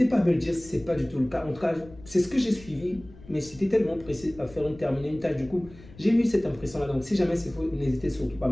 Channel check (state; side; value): noise; left; rumble, 20 dB below the sound